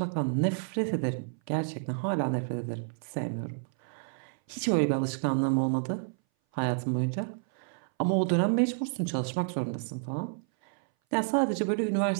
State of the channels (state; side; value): silent; left; 58 dB below the other